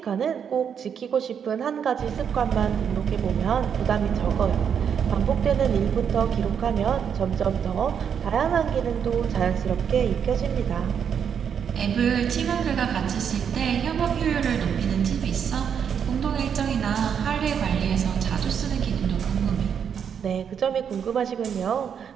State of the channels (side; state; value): left; quieter; 7.7 dB